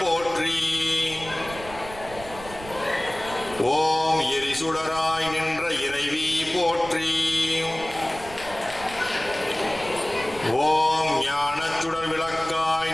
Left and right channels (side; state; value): right; noise; rumble, 16 dB below the sound